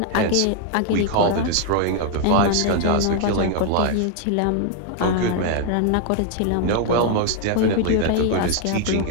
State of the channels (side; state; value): both; different; correlation 0.00